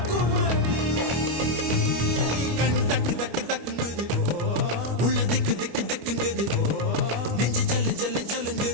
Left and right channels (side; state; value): left; late; 25 ms